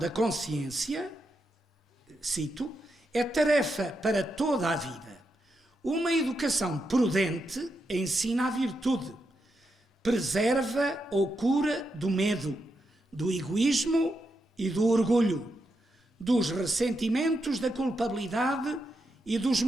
consciência, cito, é tarefa para toda a vida. Uma educação prudente ensina a virtude, preserva ou cura do medo, do egoísmo e do orgulho, dos ressentimentos da culpabilidade e dos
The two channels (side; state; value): both; normal; correlation 0.84